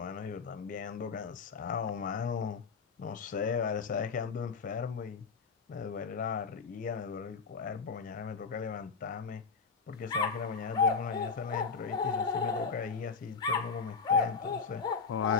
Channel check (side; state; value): right; quieter; 5.2 dB